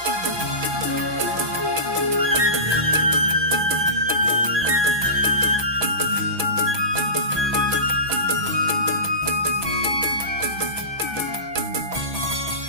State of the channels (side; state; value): left; late; 6.1 ms